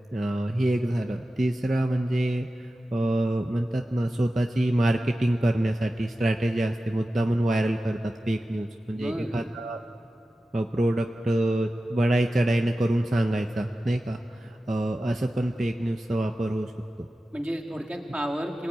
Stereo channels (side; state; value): both; normal; correlation 0.94